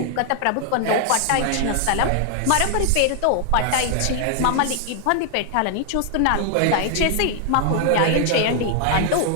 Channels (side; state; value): both; different; correlation 0.00